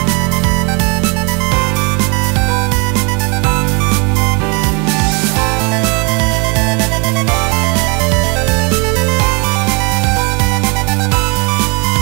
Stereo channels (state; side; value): quieter; left; 30.9 dB